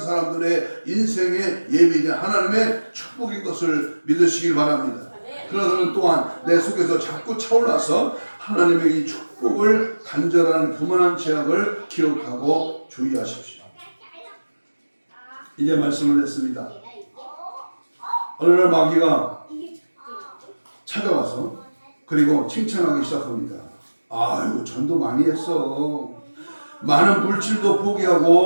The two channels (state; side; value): inverted; both; correlation -1.00